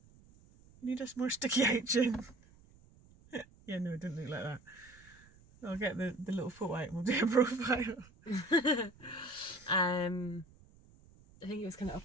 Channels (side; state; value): right; noise; rumble, 26 dB below the sound